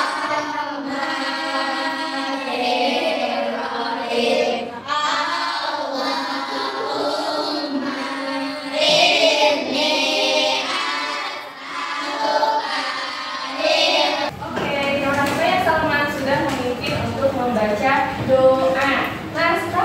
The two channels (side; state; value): both; identical; correlation 1.00